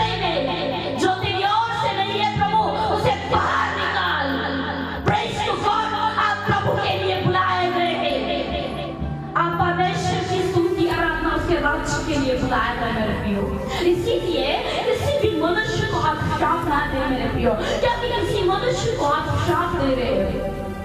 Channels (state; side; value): identical; both; correlation 1.00